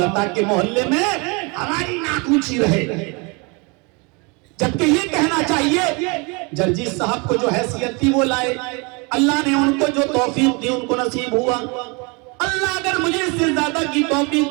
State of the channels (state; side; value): quieter; left; 30.2 dB